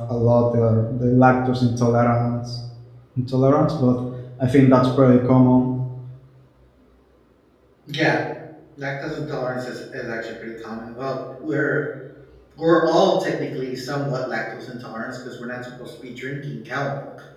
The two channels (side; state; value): both; identical; correlation 1.00